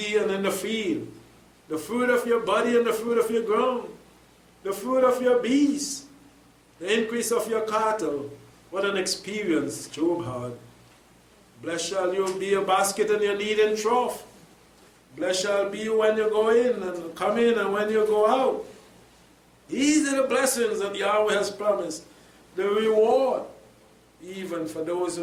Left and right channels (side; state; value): both; identical; correlation 1.00